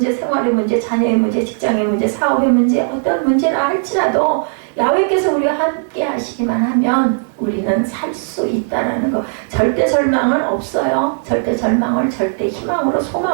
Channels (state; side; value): silent; left; digital silence